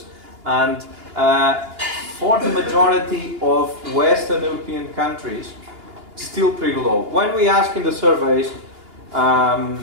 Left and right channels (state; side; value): late; left; 2.9 ms